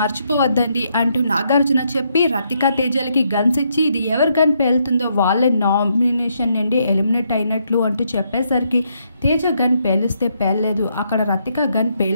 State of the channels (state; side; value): inverted; both; correlation -0.76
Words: మర్చిపోవద్దండి అంటూ నాగార్జున చెప్పి రతిక తేజలకి గన్స్ ఇచ్చి ఇది ఎవరు గన్ పేలుతుందో వాళ్ళే నామినేషన్ నుండి ఎలిమినేట్ అయినట్లు అంటూ చెప్పేసరికి తేజ గన్ పేలిస్తే పేలలేదు. అక్కడ రతిక గన్